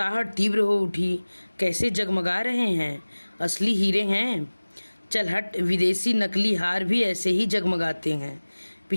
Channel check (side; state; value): both; inverted; correlation -1.00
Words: तीव्र हो उठी। कैसे जगमगा रहे हैं, असली हीरे हैं। चल हट, विदेशी नकली हार भी ऐसे ही जगमगाते हैं।